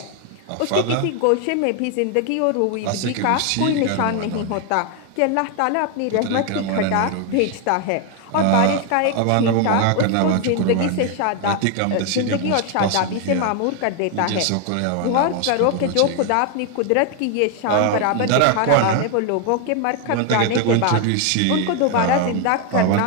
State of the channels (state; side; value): different; both; correlation 0.01